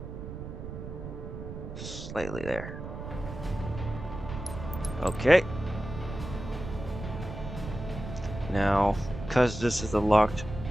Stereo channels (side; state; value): right; noise; rumble, 9 dB below the sound